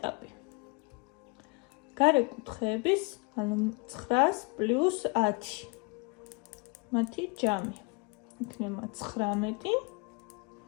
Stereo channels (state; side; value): quieter; right; 29.5 dB